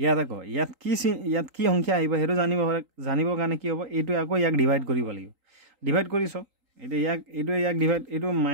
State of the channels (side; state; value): left; late; 3.8 ms